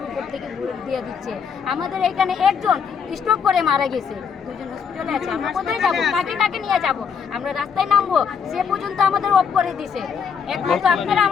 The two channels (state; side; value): quieter; right; 6.6 dB